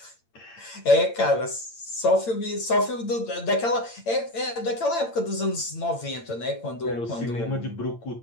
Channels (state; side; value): late; right; 8.8 ms